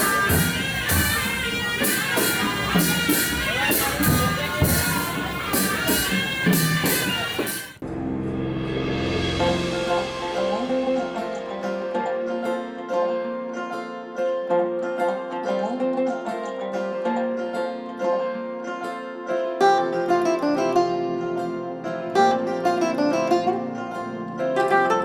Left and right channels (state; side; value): identical; both; correlation 1.00